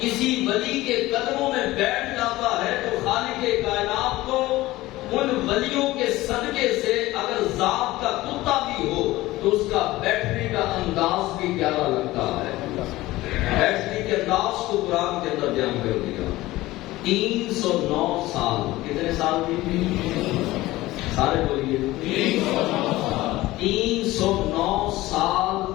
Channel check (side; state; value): right; quieter; 17.9 dB